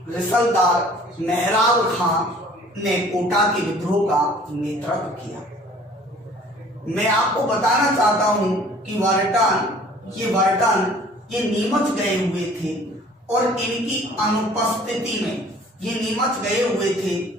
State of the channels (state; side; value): normal; both; correlation 0.52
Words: रिसलदार मेहराब खां ने कोटा के विद्रोह का नेतृत्व किया। मैं आपको बताना चाहता हूं कि वर्टन ये नीमच गए हुए थे और इनकी अनुपस्थिति